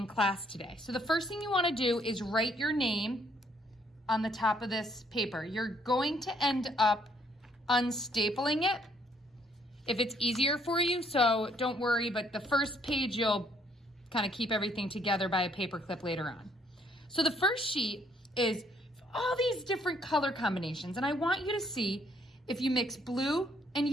class today. So the first thing you want to do is write your name on the top of this paper. You're going to end up unstapling it if it's easier for you, so don't worry, but the first page you'll kind of keep everything together by a paper clip later on. So the first sheet is all these different color combinations, and I want you to see if you mix blue and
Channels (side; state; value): both; normal; correlation 0.67